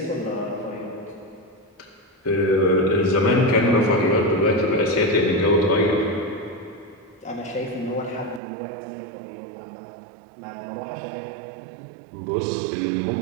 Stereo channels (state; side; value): drops out; left; at 8.4 s